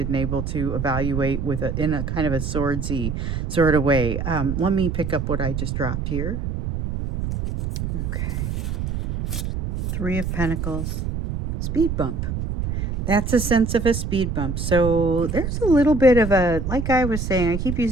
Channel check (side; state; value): right; noise; rumble, 3 dB below the sound